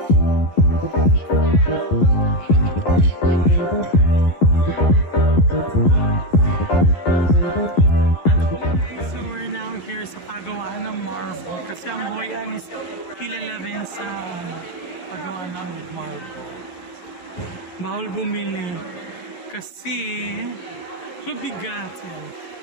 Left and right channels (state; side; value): late; right; 11 ms